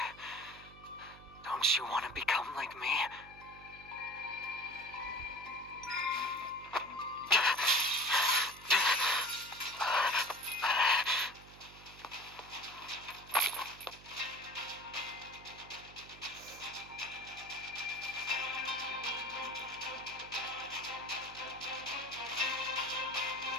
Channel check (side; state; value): right; noise; hum, 20 dB below the sound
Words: Don't you want to become like me?